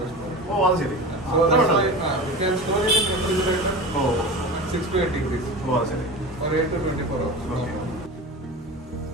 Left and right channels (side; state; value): both; normal; correlation 0.31